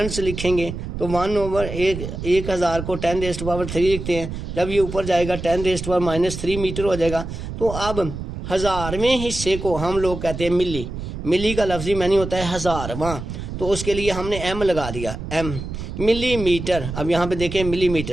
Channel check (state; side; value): noise; right; rumble, 7 dB below the sound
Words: से लिखेंगे तो 1/1000 को 10⁻³ लिखते हैं। जब ये ऊपर जाएगा 10⁻³ मीटर हो जाएगा। तो अब 1000वें हिस्से को हम लोग कहते हैं मिली, मिली का लफ्जी मानी होता है 1000वां, तो उसके लिए हमने एम लगा दिया, एम मिलीमीटर। अब यहाँ पे देखें